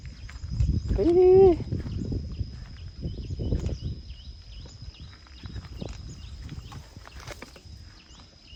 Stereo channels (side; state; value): both; identical; correlation 1.00